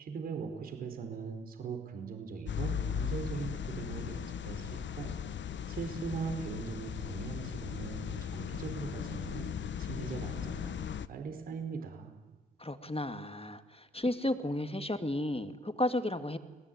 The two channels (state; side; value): normal; both; correlation 0.61